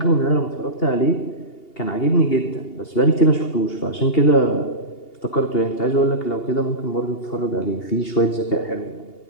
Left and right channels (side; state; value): right; late; 2.8 ms